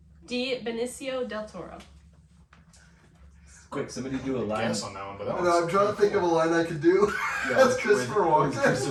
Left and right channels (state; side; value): identical; both; correlation 1.00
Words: D. Benicio del Toro. Quick, somebody do a line. Guess on that one, but that I know, I'm one's trying to think of a line I could do. That's Christopher with Walken.